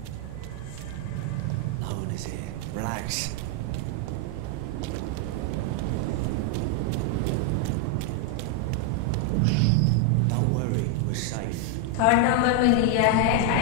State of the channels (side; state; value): both; different; correlation 0.00